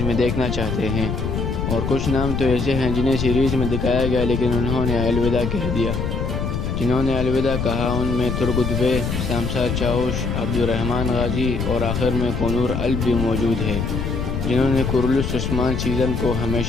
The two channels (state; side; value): noise; left; rumble, 2 dB below the sound